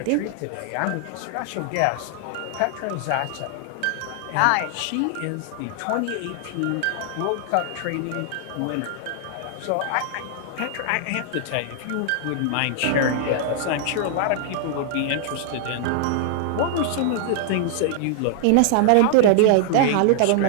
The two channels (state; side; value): different; both; correlation -0.01